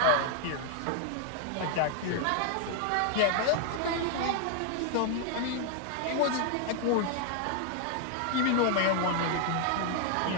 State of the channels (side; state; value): both; different; correlation 0.00